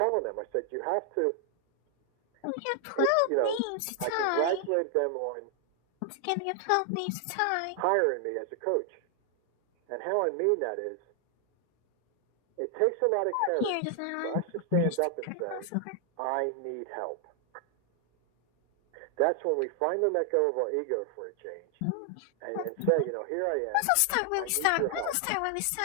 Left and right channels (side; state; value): both; different; correlation 0.00